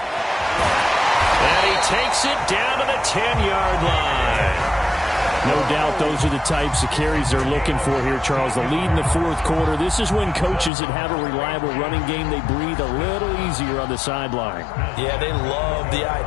And he takes it down to the 10-yard line. No doubt those are the types of carries they're looking for here, Charles. The lead in the 4th quarter. This is when coaches that have a reliable running game, they breathe a little easier on the sideline. Yeah, they love the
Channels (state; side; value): drops out; right; at 10.7 s